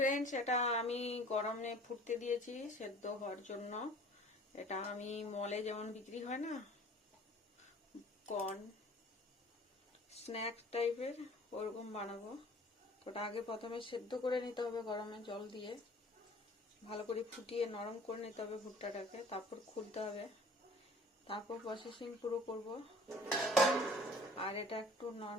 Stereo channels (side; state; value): both; normal; correlation 0.49